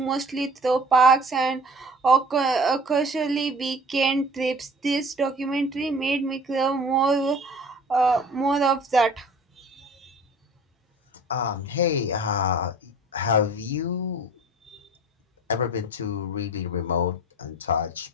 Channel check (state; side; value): normal; both; correlation 0.46